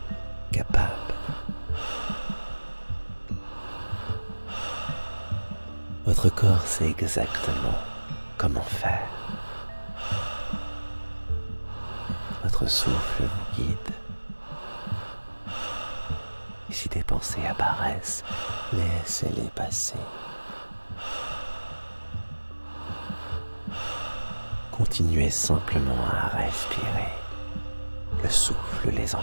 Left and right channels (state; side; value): inverted; both; correlation -1.00